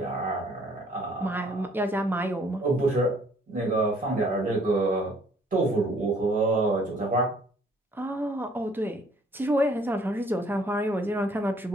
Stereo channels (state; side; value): normal; both; correlation 0.60